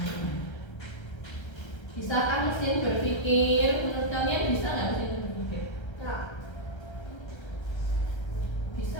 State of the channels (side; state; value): right; late; 1.3 ms